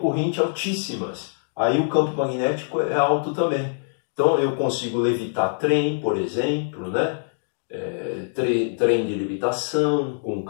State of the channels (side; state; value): right; silent; digital silence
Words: altíssimas. Aí o campo magnético é alto também. Então eu consigo levitar trem, por exemplo, né? Trem de levitação com